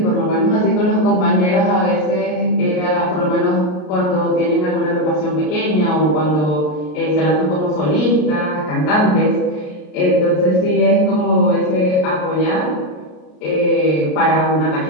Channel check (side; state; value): right; late; 33 ms